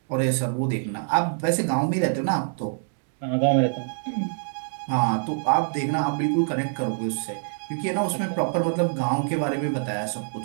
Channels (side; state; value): left; silent; digital silence